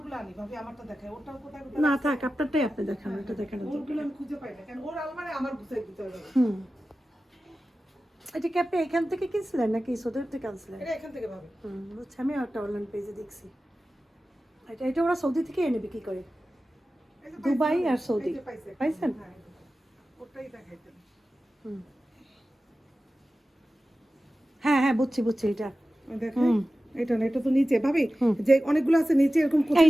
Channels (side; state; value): both; normal; correlation 0.95